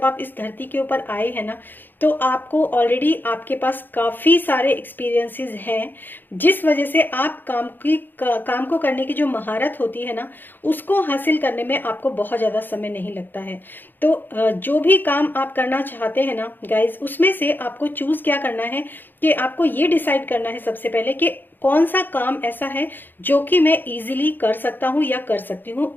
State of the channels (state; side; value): late; right; 0.092 ms